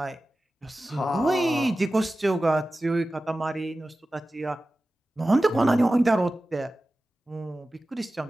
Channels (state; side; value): normal; both; correlation 0.95